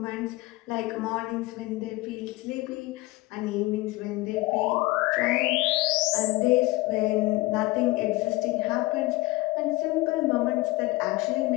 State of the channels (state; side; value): quieter; right; 20.8 dB